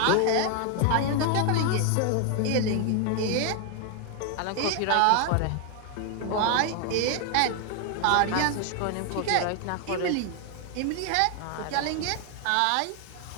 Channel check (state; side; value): different; both; correlation 0.00